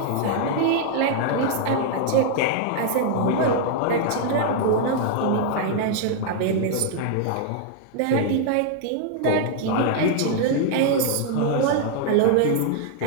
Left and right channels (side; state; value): both; different; correlation 0.00